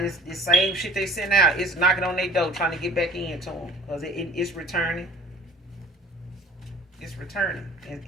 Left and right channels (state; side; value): normal; both; correlation 0.49